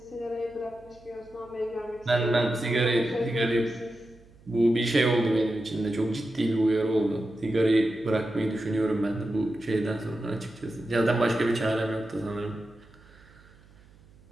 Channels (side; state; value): right; noise; hum, 26 dB below the sound